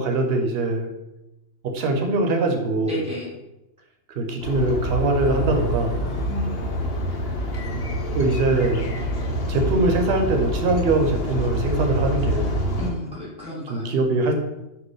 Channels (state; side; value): late; left; 2.8 ms